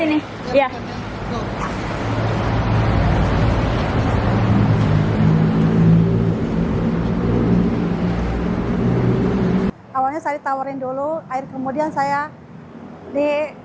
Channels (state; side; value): identical; both; correlation 1.00